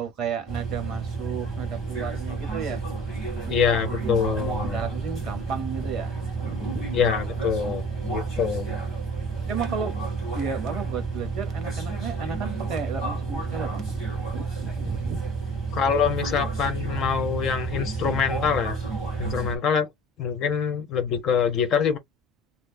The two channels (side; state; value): both; normal; correlation 0.46